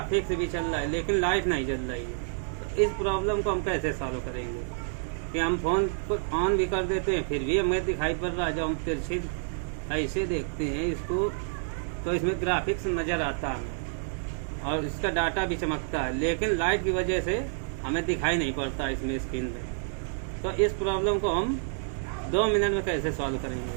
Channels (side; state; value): left; silent; digital silence